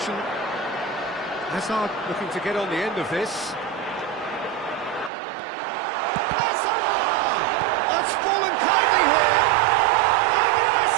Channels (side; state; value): left; drops out; at 5.1 s